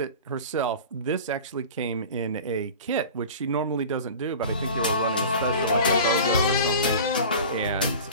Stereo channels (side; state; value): both; inverted; correlation -0.37